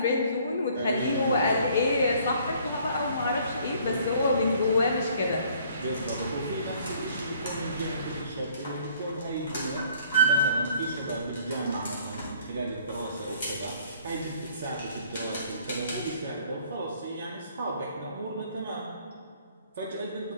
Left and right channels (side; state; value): both; inverted; correlation -0.59